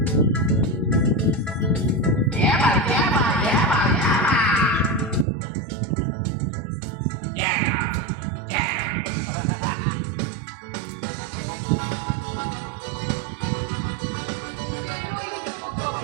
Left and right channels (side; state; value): left; drops out; at 5.2 s